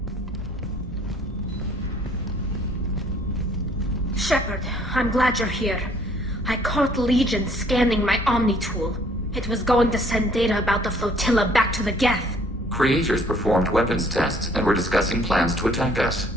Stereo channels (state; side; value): normal; both; correlation 0.60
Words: Shepard, I'm glad you're here. I caught Legion scanning my Omni tool. It was going to send data about the flotilla back to the Geth. Creators performed weapons tests and were discussing plans to attack us.